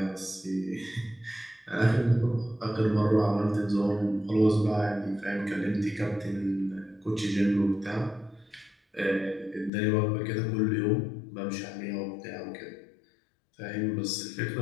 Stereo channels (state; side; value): drops out; right; at 9.7 s